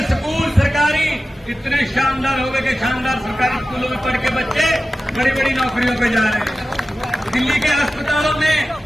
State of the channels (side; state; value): both; normal; correlation 0.95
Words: स्कूल सरकारी इतने शानदार हो गए कि शानदार सरकारी स्कूलों में पढ़ के बच्चे बड़ी बड़ी नौकरियों पे जा रहे हैं। दिल्ली के अस्पतालों में